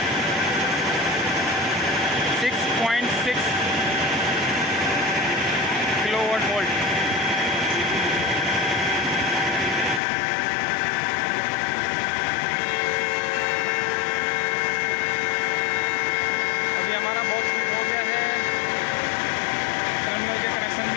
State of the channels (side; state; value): right; drops out; at 10.0 s